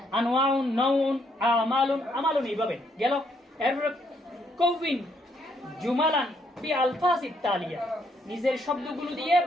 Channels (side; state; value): both; normal; correlation 0.72